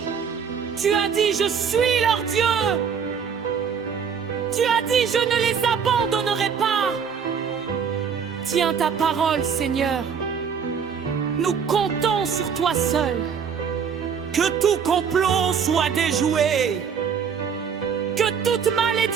Tu as dit, je suis leur Dieu. Tu as dit, je ne les abandonnerai pas. Tiens ta parole, Seigneur. Nous comptons sur toi seul. Que tout complot soit déjoué. Que toute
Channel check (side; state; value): left; quieter; 6.9 dB